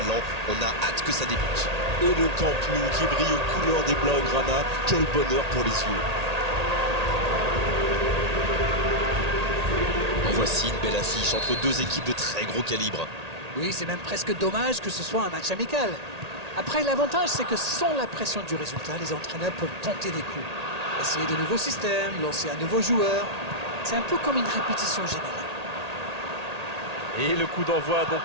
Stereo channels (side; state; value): left; late; 1.8 ms